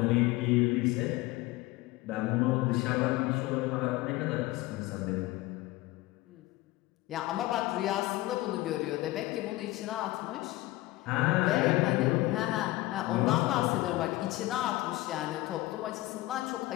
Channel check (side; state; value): right; quieter; 18.6 dB